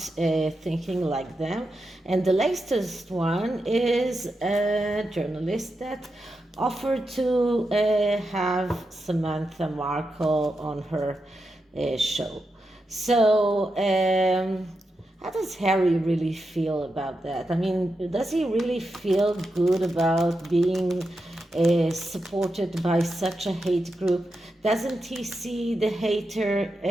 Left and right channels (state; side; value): normal; both; correlation 0.88